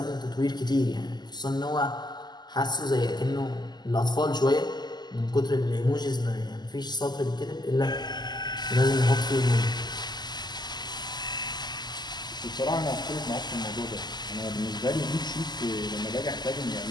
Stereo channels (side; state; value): right; late; 0.21 ms